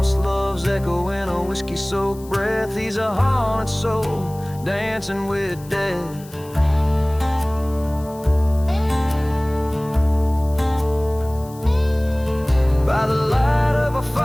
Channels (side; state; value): left; noise; hiss, 22 dB below the sound